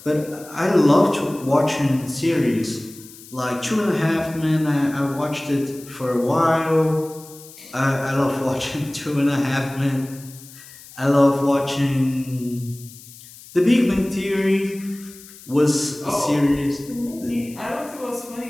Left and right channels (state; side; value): noise; left; hiss, 19 dB below the sound